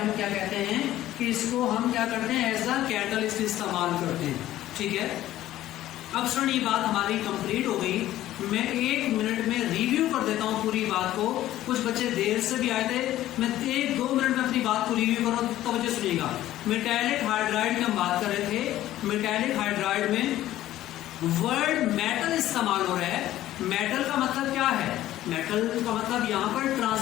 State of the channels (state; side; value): quieter; right; 14.0 dB